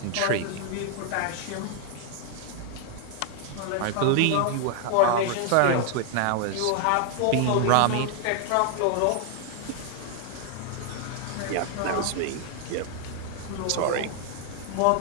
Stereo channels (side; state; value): both; different; correlation 0.00